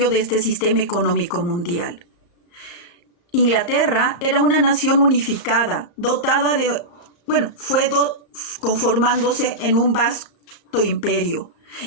de este sistema económico mundial. Inglaterra era una nación unificada, dotada de, fue conformándose en un vasto imperio.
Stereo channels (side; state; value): right; late; 34 ms